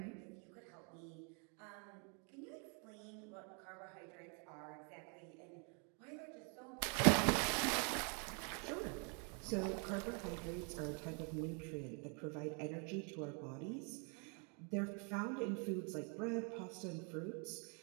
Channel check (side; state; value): left; quieter; 38.2 dB